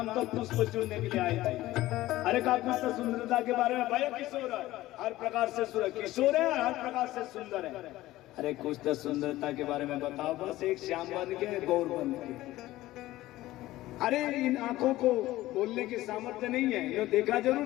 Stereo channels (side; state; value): right; quieter; 16.5 dB